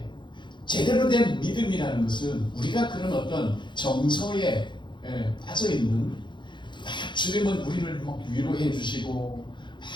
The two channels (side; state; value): right; late; 0.23 ms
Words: 제대로 된 믿음이라는 것은 우리가 그런 어떤 정서에 빠져있는, 막 주님은 우리를 막 위로해 주시고 막